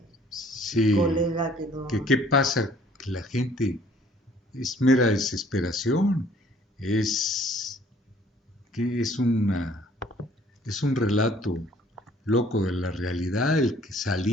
sí, colega que no... ¿Qué pasa? Que la gente es mera desesperación, es un relato loco de la realidad, el que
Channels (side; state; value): both; normal; correlation 0.58